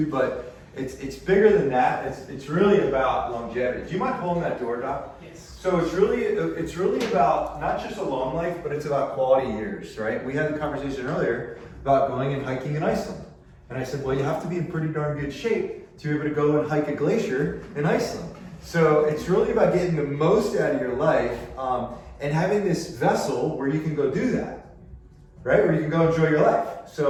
but it's bigger than that. It's really about longevity. Do you mind pulling that door, Doc? Yes. So it's really about not just a long life, but it's about quality years, right? We had the conversation earlier about going and hiking in Iceland. And I said, well, you have to be in pretty darn good shape to be able to go and hike a glacier in Iceland. So it's really about getting the most out of your life and having this vessel where you can go do that, right? Where you can go enjoy your life.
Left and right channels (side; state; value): both; identical; correlation 1.00